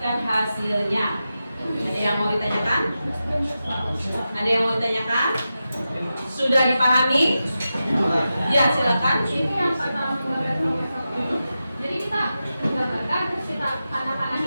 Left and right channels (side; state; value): both; inverted; correlation -0.91